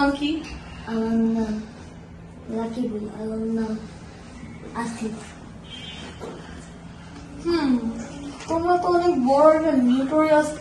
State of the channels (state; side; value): identical; both; correlation 1.00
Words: কি? আমার নাম রাকিবুল, আমার নাম আসিফ। তোমরা তো অনেক বড় একটা নিউটোরিয়াস